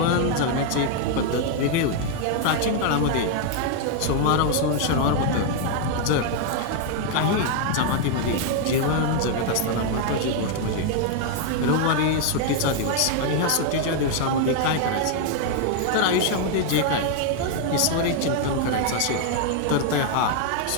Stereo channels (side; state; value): both; different; correlation 0.00